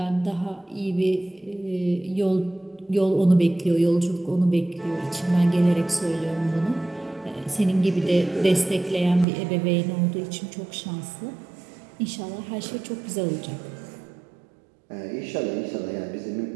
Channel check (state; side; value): drops out; left; at 9.2 s